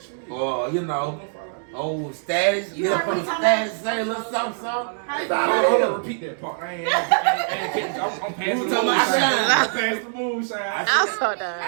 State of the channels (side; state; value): left; silent; digital silence